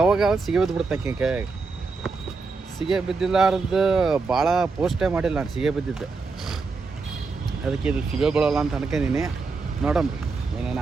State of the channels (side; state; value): left; quieter; 4.2 dB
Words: ಸಿಗಿ ಬಿದ್ದುಬಿಡ್ತಕ್ಕೆ ಕೈಯಾಗ. ಸಿಗೆ ಬಿದ್ದಿಲ್ಲಾರ್ದು ಭಾಳ ಪೋಸ್ಟೇ ಮಾಡಿಲ್ಲ ನಾನು ಸಿಗೆ ಬಿದ್ದಿದ್ದು. ಅದಕ್ಕೆ ಇದು ಸಿಗೆ ಬೀಳೋಲ್ಲ ಅಂತ ಅನ್ಕೊಂಡಿನಿ. ನೋಡಮ್ರಿ